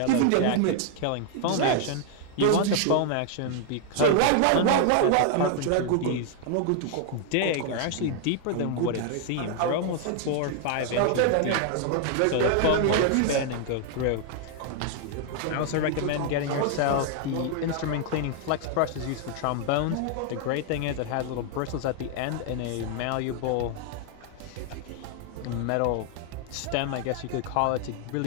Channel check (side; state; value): both; different; correlation 0.00